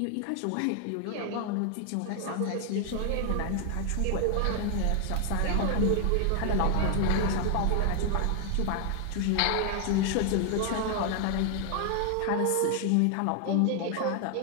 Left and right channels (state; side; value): different; both; correlation 0.00